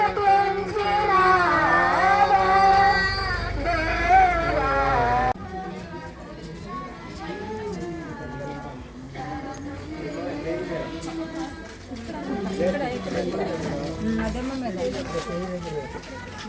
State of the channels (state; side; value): identical; both; correlation 1.00